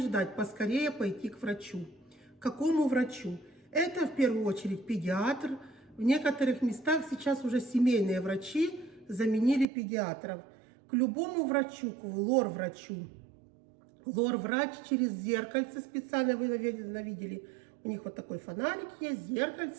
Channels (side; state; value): left; drops out; at 9.7 s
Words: поскорее пойти к врачу. К какому врачу? Это в первую очередь педиатр. В некоторых местах сейчас уже семейные врачи заменили педиатров. К любому врачу, к лор-врачу. Лор-врач через зеркальце специально, вы, наверное, видели, у них вот такой фонарик есть,